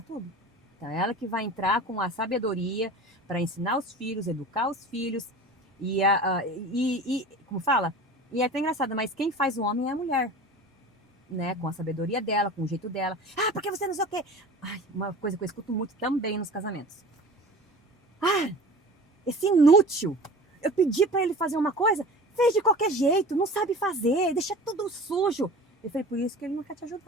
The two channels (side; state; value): both; normal; correlation 0.38